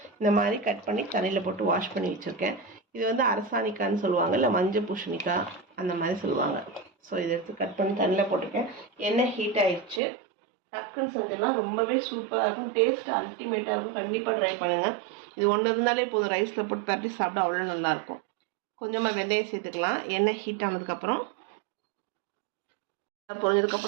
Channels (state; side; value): drops out; left; at 10.0 s